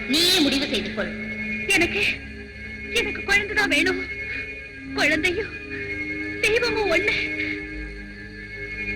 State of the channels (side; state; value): both; identical; correlation 1.00